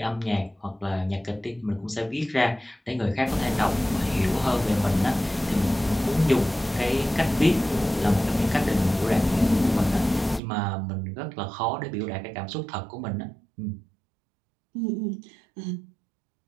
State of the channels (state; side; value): drops out; left; at 10.4 s